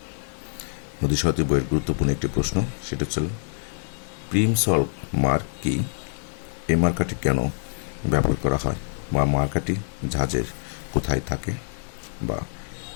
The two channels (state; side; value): silent; right; digital silence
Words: নদী সারথি বইয়ের গুরুত্বপূর্ণ একটি প্রশ্ন, সেটা হচ্ছে প্রিম সল্ভ মার্ক কি? এই মার্কাটি কেন ব্যবহার করা হয়, বা মার্কাটি জাহাজের কোথায় থাকে, বা